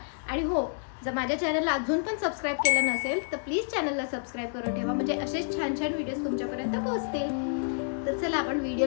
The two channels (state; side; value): silent; right; digital silence